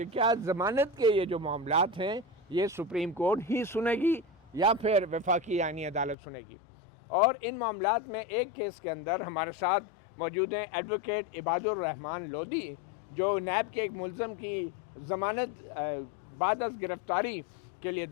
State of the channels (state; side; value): drops out; right; at 6.2 s